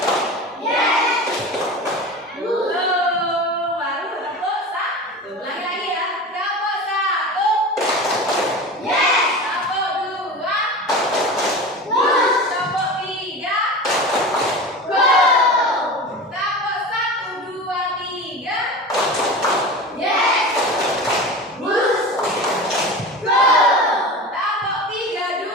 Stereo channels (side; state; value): both; normal; correlation 0.31